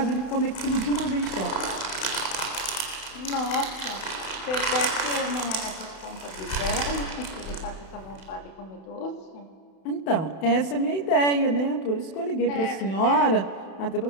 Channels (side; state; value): right; late; 31 ms